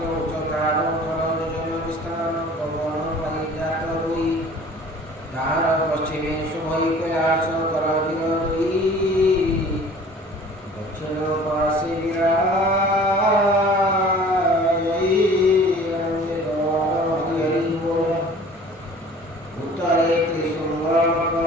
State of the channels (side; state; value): both; normal; correlation 0.48